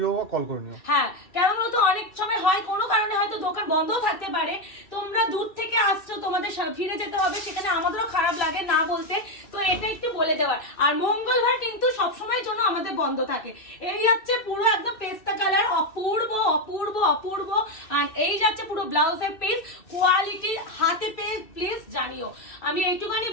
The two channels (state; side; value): late; right; 2.6 ms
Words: বা কল করে নিও। হ্যাঁ, কেমন হতো অনেক সময় হয় কোনো কারণে হয়তো দোকান বন্ধও থাকতে পারে, তোমরা দূর থেকে আসছো, তোমাদের ফিরে যেতে হবে, সেখানে আমাদেরও খারাপ লাগে না বলতে, তো এটা একটু বলে দেওয়ার। আর মঙ্গলবার কিন্তু সবসময়ের জন্য আমাদের বন্ধ থাকে। এই হচ্ছে পুরো একদম পেস্তা কালার, অপূর্ব অপূর্ব অপূর্ব। আর এই যাচ্ছে পুরো ব্লাউজের পিস, কোয়ালিটি হাতে পেয়ে প্লিজ জানিও। আমি এইটুখানি